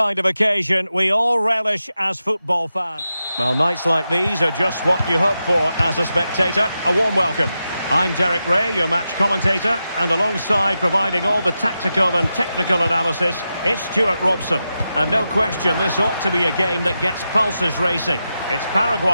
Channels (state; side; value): inverted; both; correlation -0.89